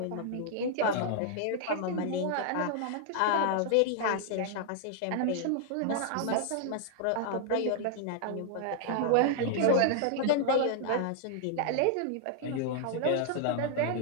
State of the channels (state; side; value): different; both; correlation 0.00